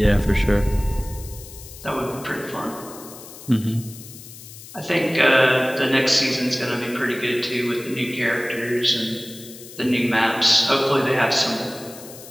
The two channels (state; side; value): noise; left; hiss, 16 dB below the sound